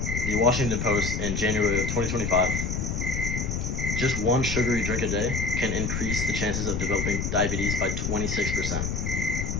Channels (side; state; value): left; noise; rumble, 2 dB below the sound